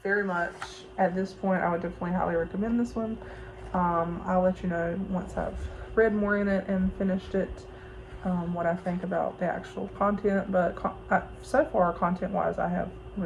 very much. At this point I would definitely highly recommend this one. I'll let you know once I've read more in it and finished it, what I think about the actual content, but so far content wise I have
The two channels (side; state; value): both; identical; correlation 1.00